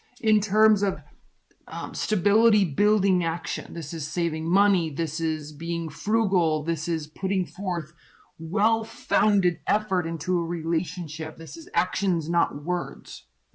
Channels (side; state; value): both; identical; correlation 1.00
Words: In terms of stability building action. This is saving money. This is being frugal. This is putting forth well-founded effort into a relationship. This is actions, not words,